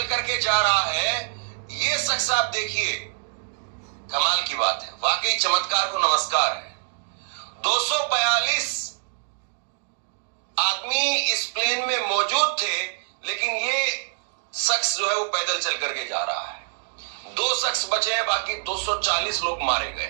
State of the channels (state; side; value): silent; left; digital silence